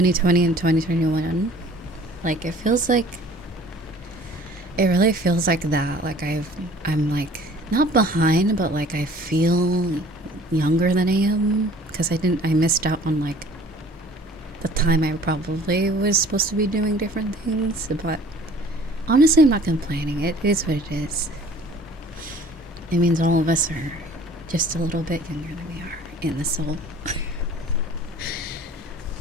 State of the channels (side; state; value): both; normal; correlation 0.50